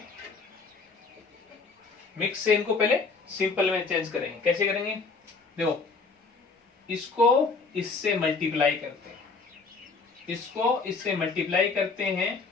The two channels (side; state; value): right; quieter; 4.4 dB